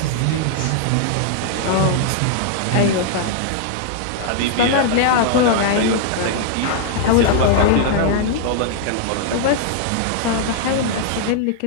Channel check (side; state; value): both; different; correlation -0.01